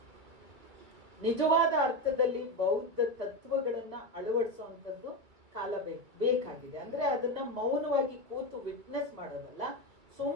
ನಿಜವಾದ ಅರ್ಥದಲ್ಲಿ ಬೌದ್ಧ ತತ್ವಗಳನ್ನ ಅಳವಡಿಸುವಂಥದ್ದು ಕಾಲ ಬೇಕಾಗಿದೆ. ಅಂದ್ರೆ ಅದನ್ನ ಮೌನವಾಗಿ ಕೂತು ವಿಟ್ನೆಸ್ ಮಾಡೋದಲ್ಲ,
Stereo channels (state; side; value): late; left; 2.4 ms